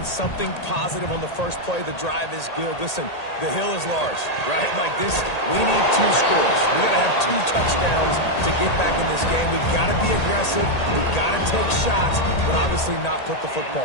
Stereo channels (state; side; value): late; right; 1.8 ms